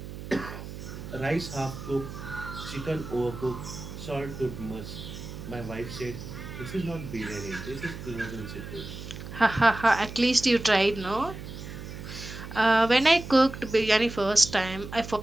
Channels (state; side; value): noise; right; hum, 11 dB below the sound